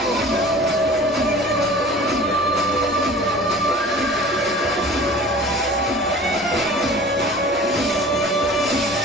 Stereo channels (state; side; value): normal; both; correlation 0.43